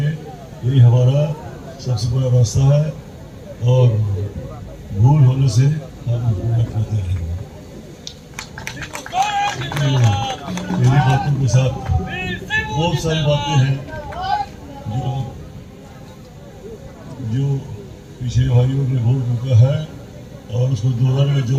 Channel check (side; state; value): both; identical; correlation 1.00